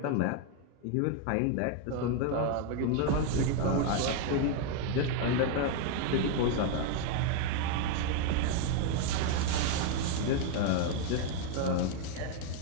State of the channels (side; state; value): both; different; correlation 0.00